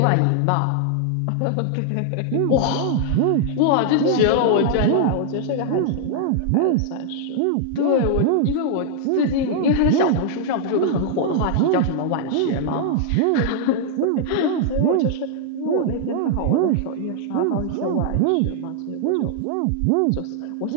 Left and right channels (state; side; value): different; both; correlation -0.01